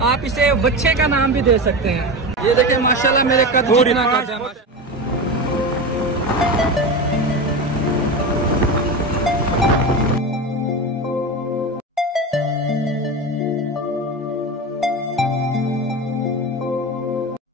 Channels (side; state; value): both; normal; correlation 0.23